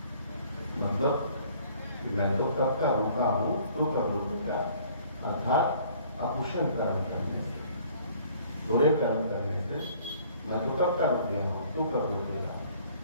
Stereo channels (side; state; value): both; inverted; correlation -0.56